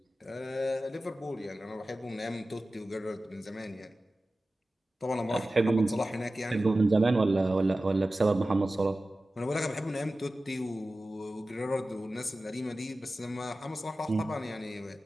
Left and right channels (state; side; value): normal; both; correlation 0.95